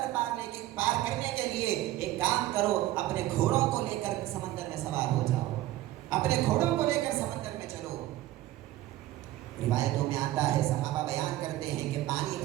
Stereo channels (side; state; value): left; quieter; 15.4 dB